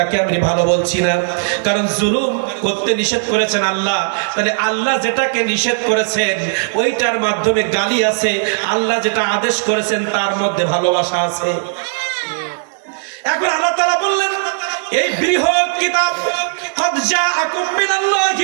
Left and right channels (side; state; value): left; silent; 68 dB below the other